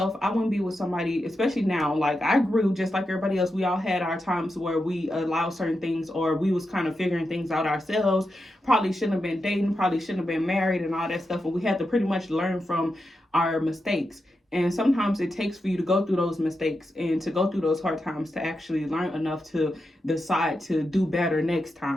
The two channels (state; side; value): normal; both; correlation 0.88